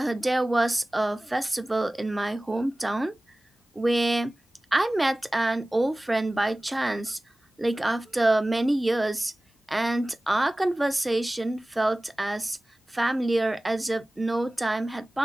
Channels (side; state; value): both; normal; correlation 0.98